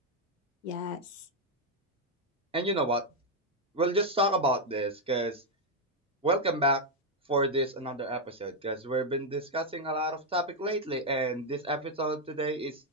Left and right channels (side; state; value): both; normal; correlation 0.01